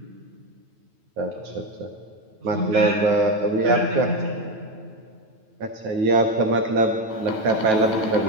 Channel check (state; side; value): late; left; 9.2 ms